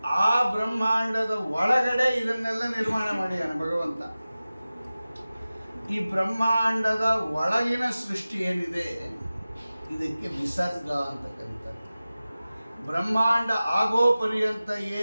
ಆ ಬ್ರಹ್ಮಾಂಡದ ಒಳಗಡೆ ಇದನ್ನೆಲ್ಲ ನಿರ್ಮಾಣ ಮಾಡಿದ್ದಾನೆ ಭಗವಂತ. ಈ ಬ್ರಹ್ಮಾಂಡದ ಒಳಗಿನ ಸೃಷ್ಟಿ ಏನಿದೆ, ಇದಕ್ಕೆ ವಿಸರ್ಗ ಅಂತ ಕರೀತಾರೆ. ಬ್ರಹ್ಮಾಂಡ ಆಗೋ ಪರ್ಯಂತ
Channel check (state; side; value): inverted; both; correlation -0.96